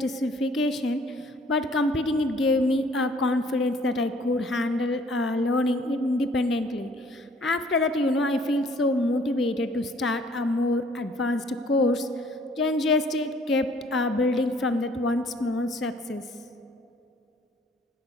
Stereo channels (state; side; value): normal; both; correlation 0.58